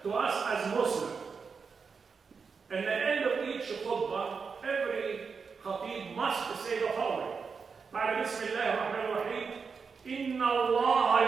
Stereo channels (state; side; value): quieter; left; 5.4 dB